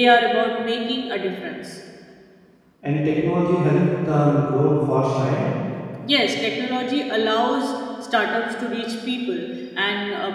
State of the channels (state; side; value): identical; both; correlation 1.00